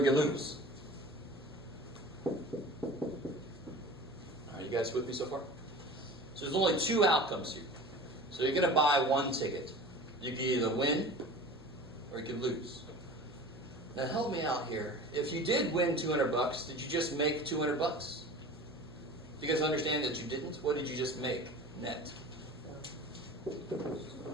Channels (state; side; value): normal; both; correlation 0.38